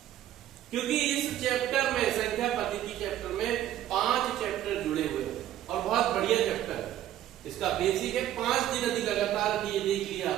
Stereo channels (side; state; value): left; quieter; 12.3 dB